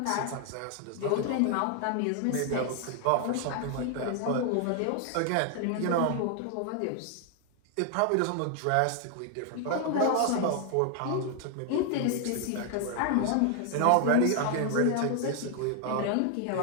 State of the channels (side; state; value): both; different; correlation 0.00